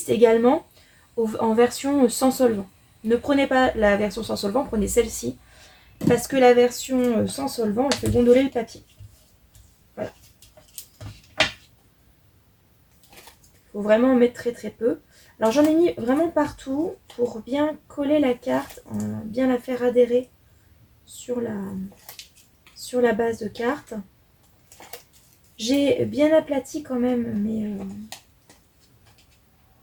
également en version sans solvant. Ne prenez pas la version sans solvant, prenez celle-ci. Parce que la version sans solvant, elle fait gondoler le papier. Voilà. Il faut vraiment en mettre très très peu. Alors j'en ai mis vraiment partout pour bien coller la carte, bien la faire adhérer sur la base de carte. J'ai bien aplati quand même, mais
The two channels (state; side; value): identical; both; correlation 1.00